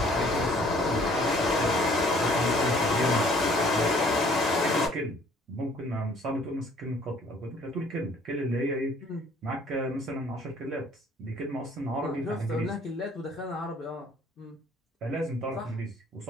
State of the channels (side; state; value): both; normal; correlation 0.58